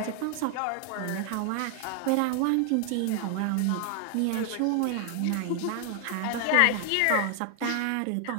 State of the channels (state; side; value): different; both; correlation 0.00